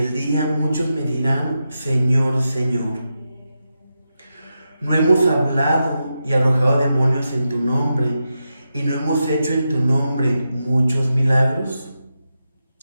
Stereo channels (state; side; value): inverted; both; correlation -0.88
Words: día muchos me dirán: Señor, Señor, ¿no hemos hablado y arrojado demonios en tu nombre, y no hemos hecho en tu nombre muchos milagros?